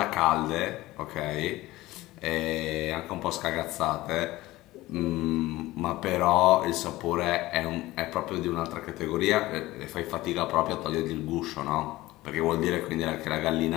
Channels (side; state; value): right; quieter; 18.1 dB